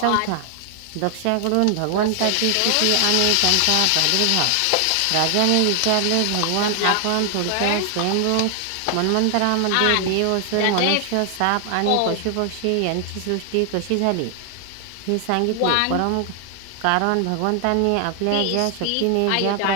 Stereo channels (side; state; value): both; different; correlation 0.00